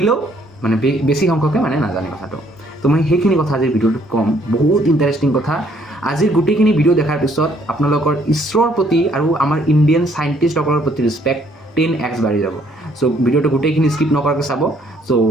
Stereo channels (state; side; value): normal; both; correlation 0.65